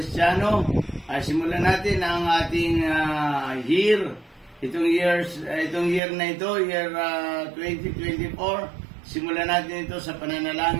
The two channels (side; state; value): left; drops out; at 6.0 s